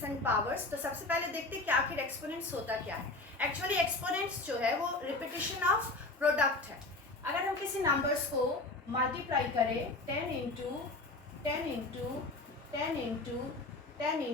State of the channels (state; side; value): quieter; right; 3.1 dB